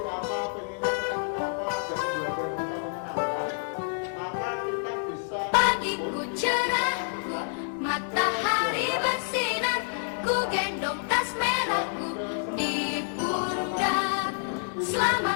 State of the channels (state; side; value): silent; right; digital silence